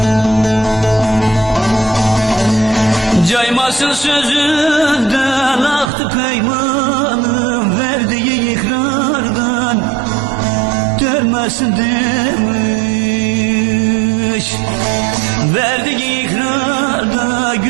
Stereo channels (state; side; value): drops out; left; at 5.9 s